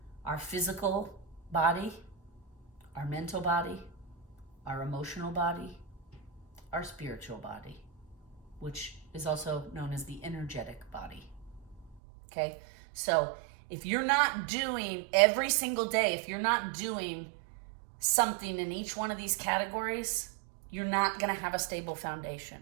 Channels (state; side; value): drops out; left; at 12.0 s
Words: Our physical body, our mental body, our emotional body, our spiritual body, which is also known as the energetic body. Okay? So if you're not doing every single day, if you're not doing something in each one of these categories, you're not going to have a stable